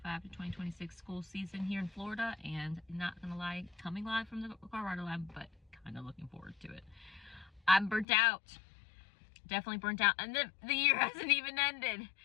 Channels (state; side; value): drops out; right; at 8.1 s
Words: to 2026 school season here in Florida, and not gonna lie, coming live from the Colorado lab, but kind of looking forward to it. I'm burnt out. Definitely burnt out, and the year hasn't even ended.